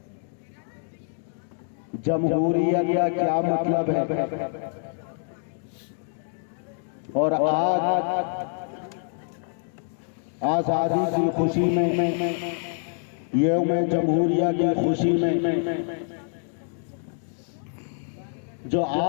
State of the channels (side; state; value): right; silent; 61 dB below the other